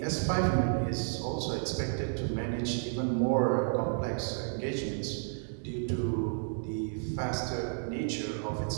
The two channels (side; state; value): left; silent; digital silence